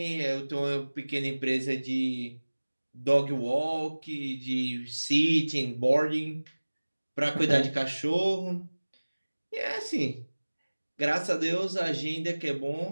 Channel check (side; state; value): both; inverted; correlation -1.00